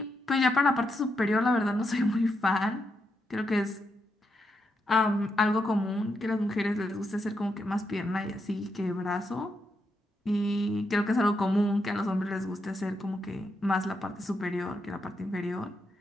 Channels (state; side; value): normal; both; correlation 0.82